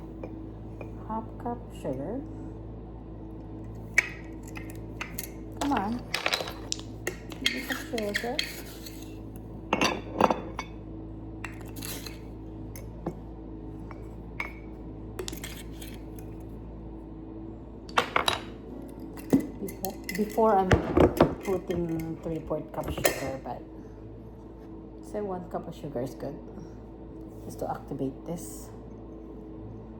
1/2 cup sugar. Come on. Give me some sugar. Before I'm putting 3/4 cup sugar, but say 1 cup of sugar is good. Just to activate this.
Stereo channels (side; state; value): both; identical; correlation 1.00